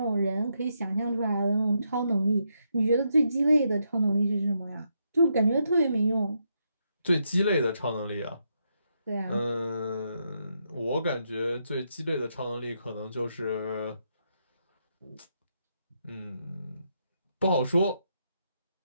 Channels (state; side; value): inverted; both; correlation -0.80